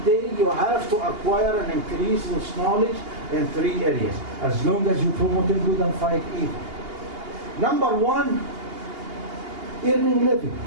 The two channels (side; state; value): left; late; 2.8 ms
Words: day you have to acquire and increase this knowledge in 3 areas, as long as you promote good and fight evil. Number 1, earning living.